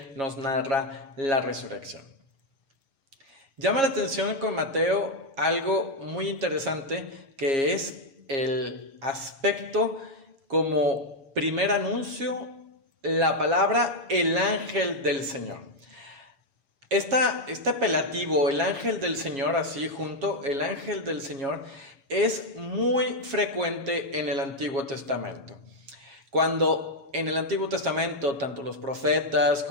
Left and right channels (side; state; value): left; late; 7.4 ms